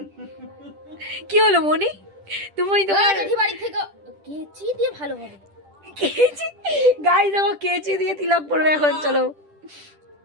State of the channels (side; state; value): left; late; 10 ms